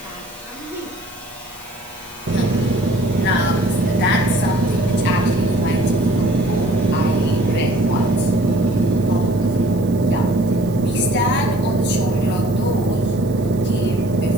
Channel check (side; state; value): right; noise; hiss, 23 dB below the sound